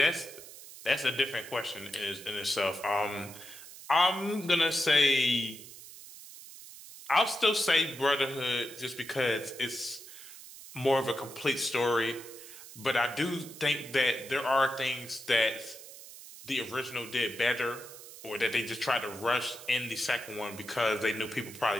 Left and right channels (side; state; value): right; noise; hiss, 16 dB below the sound